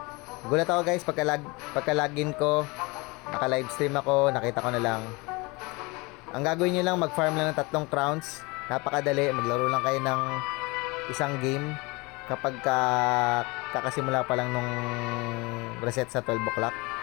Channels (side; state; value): right; quieter; 25.8 dB